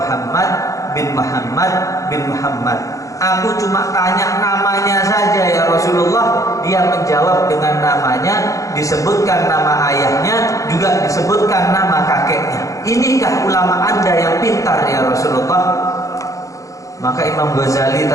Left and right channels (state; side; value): late; right; 0.16 ms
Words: "Muhammad bin Muhammad bin Muhammad." "Aku cuma tanya namanya saja ya Rasulullah." Dia menjawab dengan namanya, disebutkan nama ayahnya, juga disebutkan nama kakeknya. "Inikah ulama Anda yang pintar ya Rasulullah?" Maka Imam Ghazali